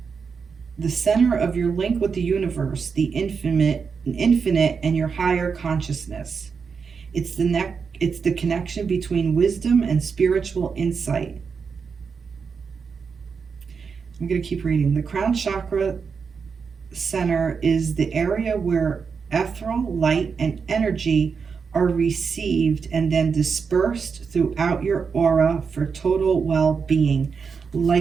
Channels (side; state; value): left; quieter; 5.7 dB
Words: the center of your link with the universe, the infinite and your higher consciousness. It's the connection between wisdom and spiritual insight. I'm going to keep reading. The crown chakra center is the area where ethereal light and energy are received and then dispersed throughout your aura for total well-being.